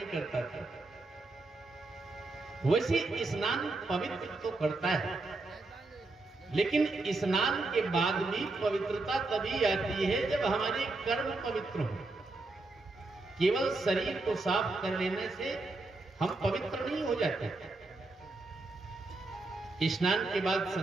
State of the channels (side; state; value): left; quieter; 3.2 dB